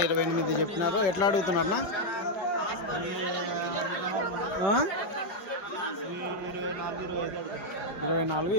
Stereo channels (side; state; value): right; late; 5.2 ms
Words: 28 చెప్పినారు. ఎట్లా అడుగుతున్నారన్నా? 24,